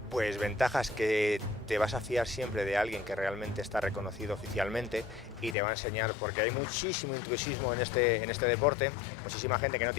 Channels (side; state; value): right; drops out; at 5.6 s